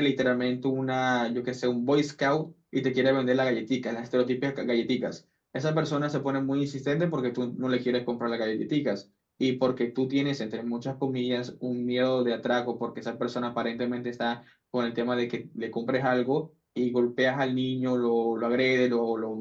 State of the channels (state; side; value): identical; both; correlation 1.00